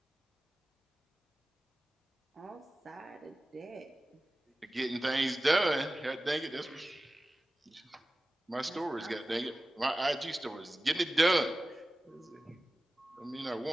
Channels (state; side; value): normal; both; correlation 0.96